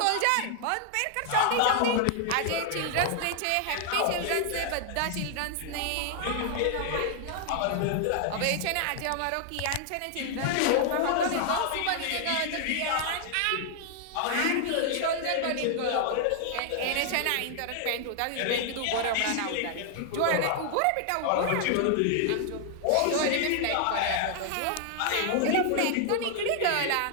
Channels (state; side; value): different; both; correlation 0.00